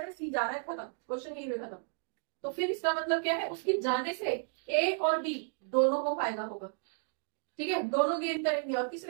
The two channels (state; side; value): silent; left; 56 dB below the other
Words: है, सी जा रहा है, खत्म, क्वेश्चन यही खत्म। तो फिर इसका मतलब क्या है? उसके जाने से ए और बी दोनों को फायदा होगा। ठीक है, दोनों गेन करेंगे और किस